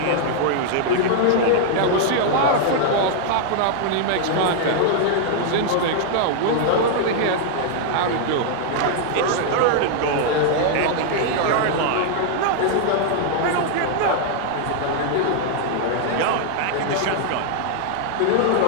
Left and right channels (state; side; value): different; both; correlation 0.00